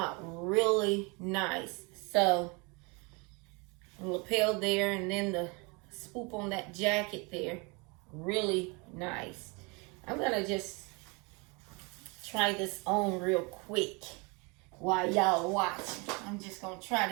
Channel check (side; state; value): left; quieter; 29.8 dB